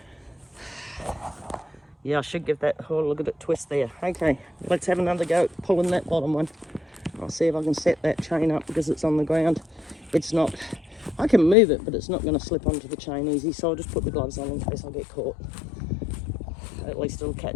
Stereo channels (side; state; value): right; drops out; at 11.6 s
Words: Yeah, I should give that, oh, look at it twist there. Okay, let's have another go at pulling that bottom one. I'll see if I can set that chain up because it's on the ground. It's not, I can move it, but it's not going to slip onto the chain easy, so I'll just put the gloves on in case I get caught. At least it'll